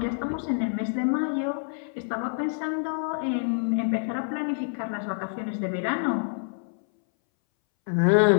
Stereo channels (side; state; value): right; silent; 60 dB below the other